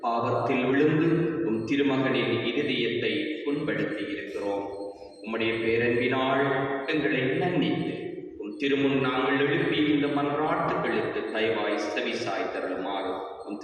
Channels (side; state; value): both; identical; correlation 1.00